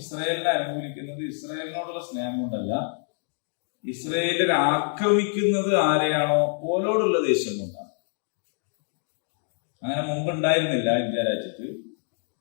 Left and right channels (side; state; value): right; silent; 61 dB below the other